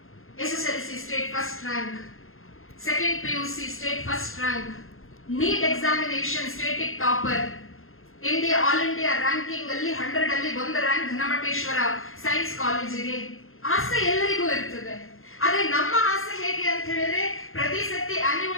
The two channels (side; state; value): right; late; 0.61 ms